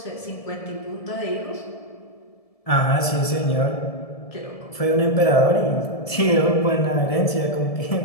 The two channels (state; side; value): late; right; 1.7 ms